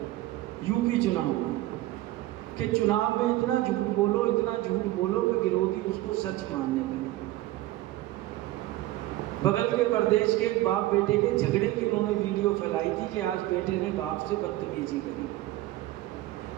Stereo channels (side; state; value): left; quieter; 16.5 dB